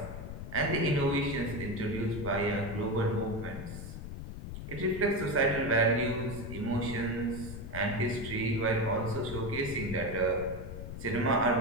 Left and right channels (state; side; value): noise; left; rumble, 8 dB below the sound